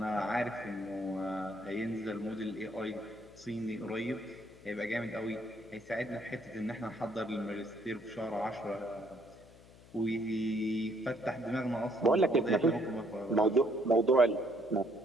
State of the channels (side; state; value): left; noise; hum, 22 dB below the sound